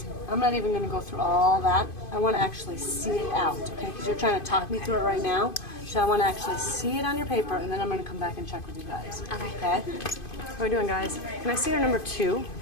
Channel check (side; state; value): right; late; 2.5 ms